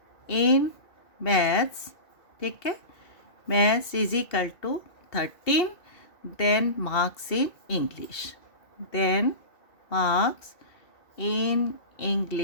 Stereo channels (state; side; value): late; right; 2.7 ms